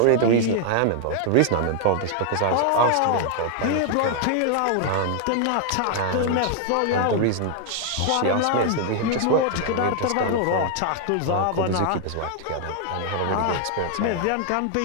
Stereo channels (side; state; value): both; different; correlation 0.00